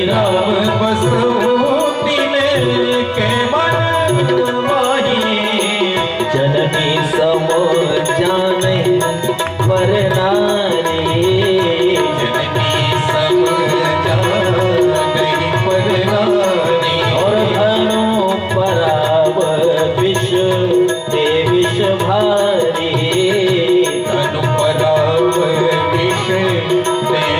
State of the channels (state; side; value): identical; both; correlation 1.00